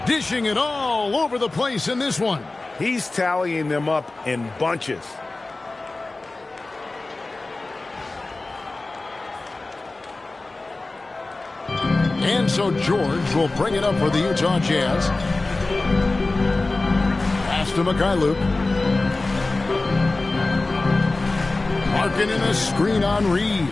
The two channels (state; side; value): quieter; right; 3.2 dB